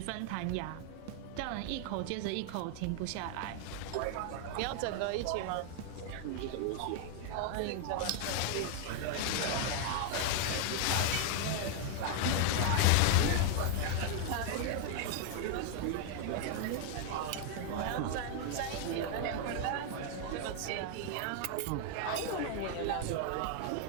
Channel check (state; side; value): different; both; correlation 0.00